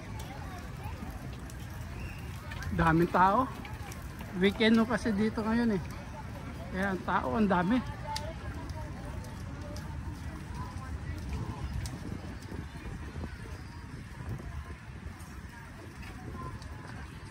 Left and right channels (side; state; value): both; identical; correlation 1.00